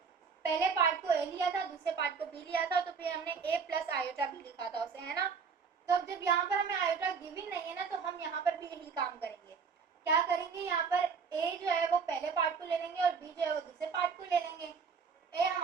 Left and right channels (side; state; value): left; quieter; 5.7 dB